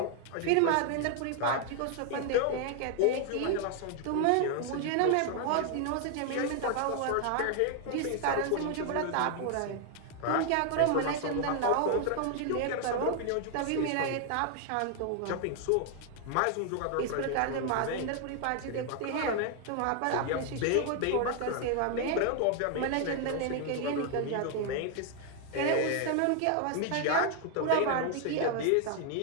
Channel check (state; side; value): different; both; correlation 0.00